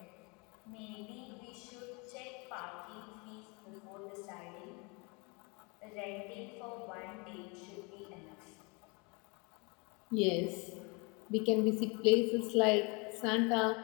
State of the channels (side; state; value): right; quieter; 30.1 dB